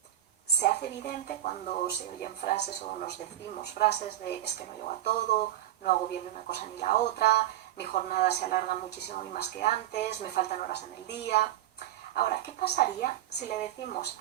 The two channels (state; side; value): quieter; left; 12.9 dB